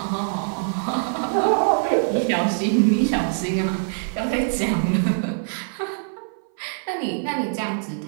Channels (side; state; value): left; silent; 56 dB below the other